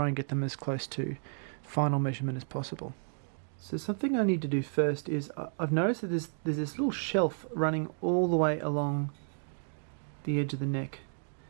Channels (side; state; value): left; silent; digital silence